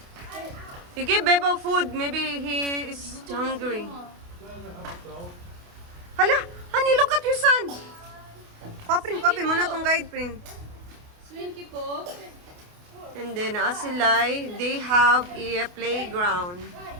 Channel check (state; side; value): late; left; 28 ms